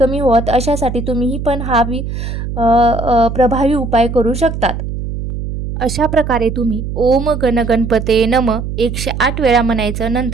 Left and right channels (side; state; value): right; noise; hum, 5 dB below the sound